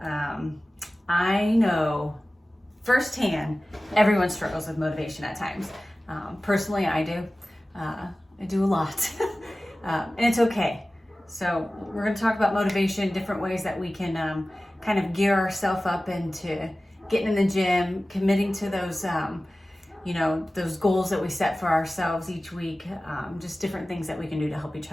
I know firsthand everyone struggles with motivation at times. Personally, I do. I do a lot, and it's okay. So we're going to talk about motivation, different ways that we can kind of gear ourselves up into getting in the gym, committing to those those goals that we set for ourselves each week, just different things that we can do to help each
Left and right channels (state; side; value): normal; both; correlation 0.96